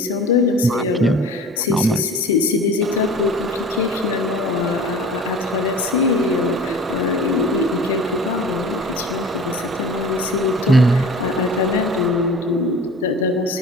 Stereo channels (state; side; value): normal; both; correlation 0.40